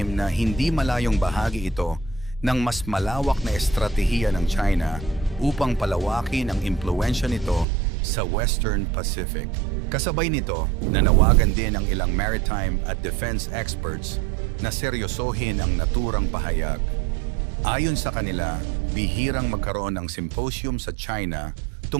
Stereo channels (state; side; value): drops out; left; at 7.7 s